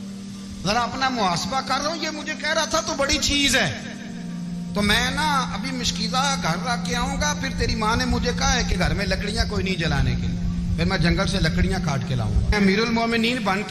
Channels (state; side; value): identical; both; correlation 1.00